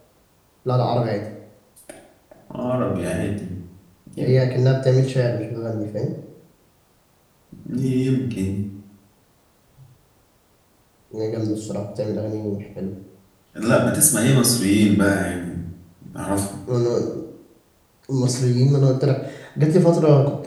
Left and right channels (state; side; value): identical; both; correlation 1.00